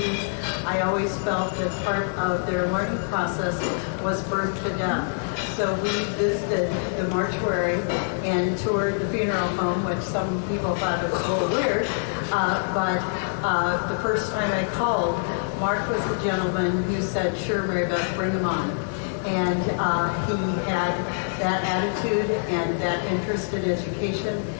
I always felt that part of their learning process was birth to death. So we visited the mortuary and toured the funeral home, which some people thought was a little weird. But the first time I called, Marc was the gentleman who said, "Sure, Mary Beth, bring him on." And he had that attitude and that interest in education.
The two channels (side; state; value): right; silent; 62 dB below the other